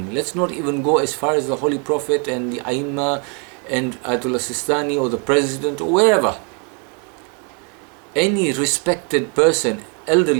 Let's not even go as far as the Holy Prophet and the Aimma and Ayatollah Sistani or the President or wherever. Any respected person,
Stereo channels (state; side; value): quieter; left; 37.1 dB